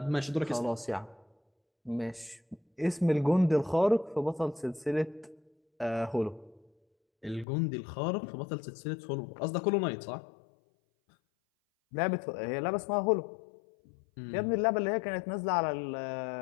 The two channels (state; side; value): drops out; right; at 7.5 s